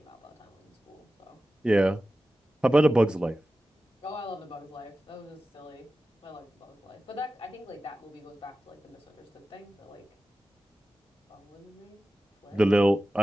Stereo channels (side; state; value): both; normal; correlation 0.94